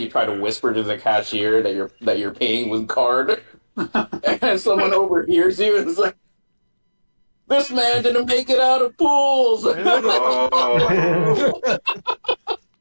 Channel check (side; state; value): both; inverted; correlation -1.00